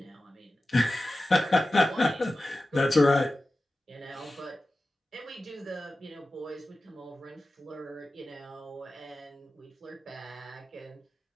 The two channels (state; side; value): normal; both; correlation 0.95